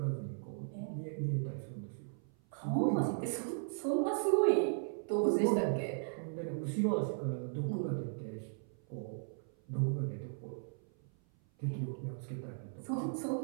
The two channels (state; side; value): silent; left; 53 dB below the other